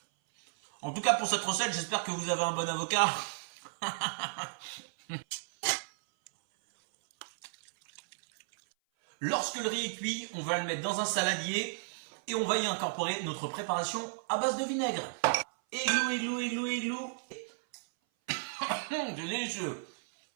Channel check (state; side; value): silent; left; 55 dB below the other